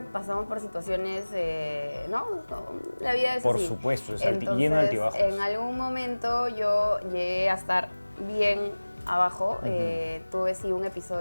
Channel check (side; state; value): both; inverted; correlation -1.00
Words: pasamos por situaciones, ¿no? La vida es así. Por supuesto, es Entonces, lleno de altibajos. En algún momento yo llegué a estar bien abajo. Tuve sí un